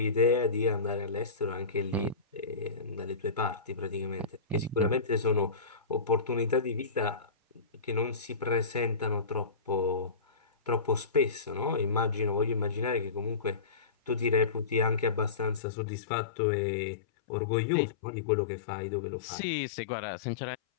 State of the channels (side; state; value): right; drops out; at 15.6 s